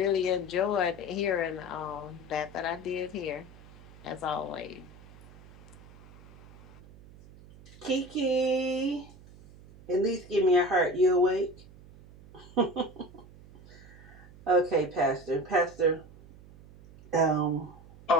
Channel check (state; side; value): noise; right; hum, 21 dB below the sound